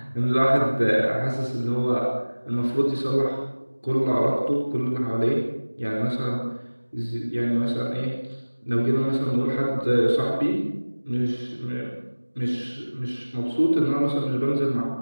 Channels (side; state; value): both; inverted; correlation -1.00